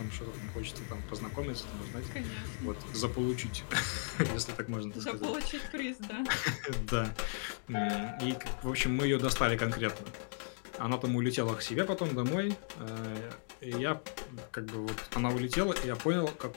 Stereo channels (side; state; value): right; silent; digital silence